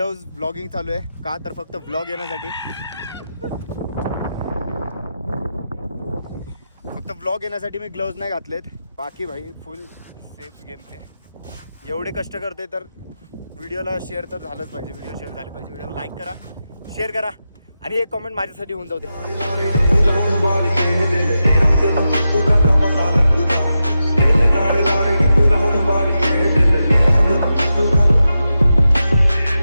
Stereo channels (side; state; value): both; inverted; correlation -0.90